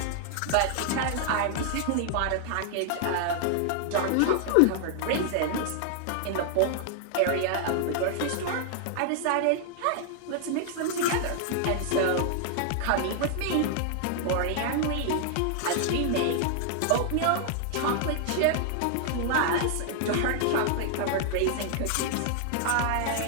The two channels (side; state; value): both; different; correlation 0.00